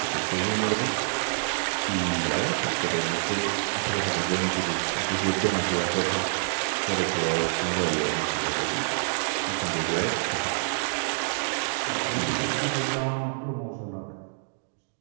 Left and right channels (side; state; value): left; silent; digital silence